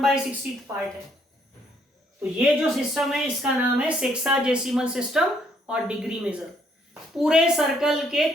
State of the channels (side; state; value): both; normal; correlation 0.68